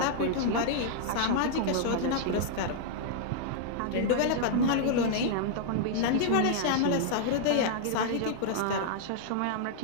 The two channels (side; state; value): both; different; correlation -0.01